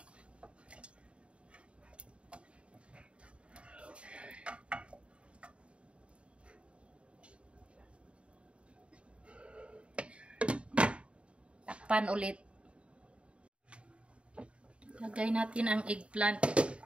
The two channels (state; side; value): late; left; 0.059 ms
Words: Takpan ulit. Lagay natin ang eggplant.